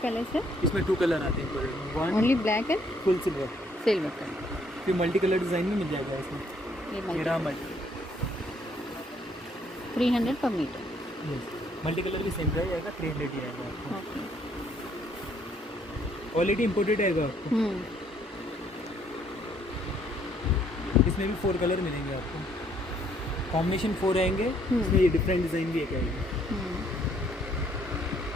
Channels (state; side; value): normal; both; correlation 0.66